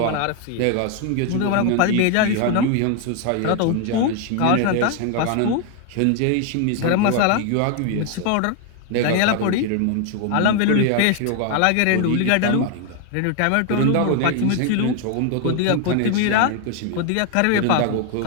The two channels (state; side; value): different; both; correlation 0.01